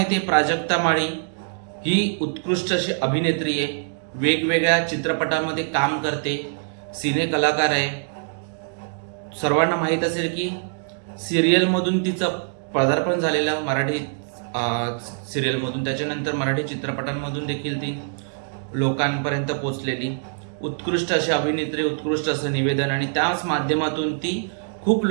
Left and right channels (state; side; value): silent; left; digital silence